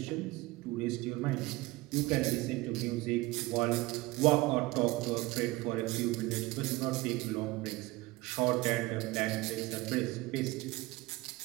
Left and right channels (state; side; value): quieter; left; 20.9 dB